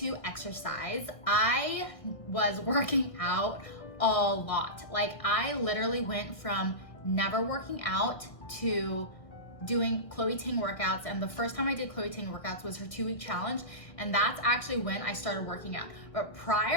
exercise. I was working out a lot. Like I literally went from never working out to doing Chloe Ting workouts, and the first time I did Chloe Ting workouts was her 2-week challenge, and that's actually when I started working out. But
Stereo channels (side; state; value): right; late; 1.6 ms